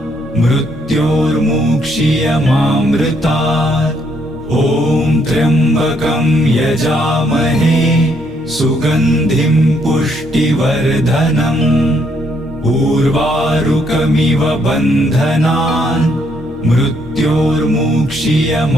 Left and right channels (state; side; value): normal; both; correlation 0.71